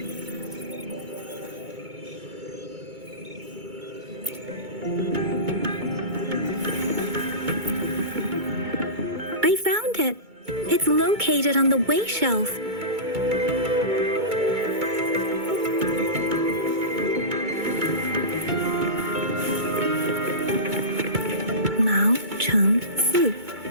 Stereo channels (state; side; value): late; left; 2.2 ms